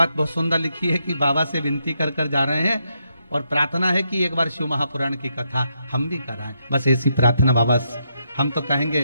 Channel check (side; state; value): both; inverted; correlation -0.80